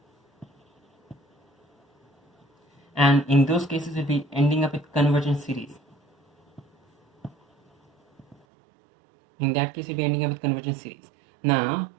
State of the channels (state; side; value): drops out; left; at 8.3 s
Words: and in those cases we'll be ending up with convergent series. In that case we'll be ending up with convergent series. Now,